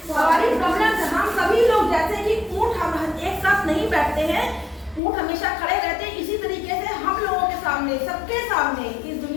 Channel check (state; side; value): drops out; right; at 5.0 s